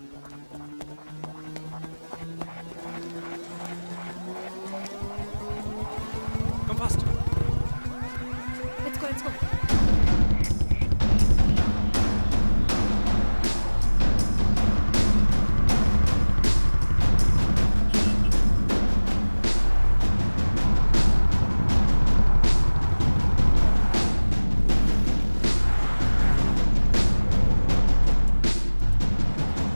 Come fast. Let's go, let's go.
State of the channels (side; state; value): both; inverted; correlation -1.00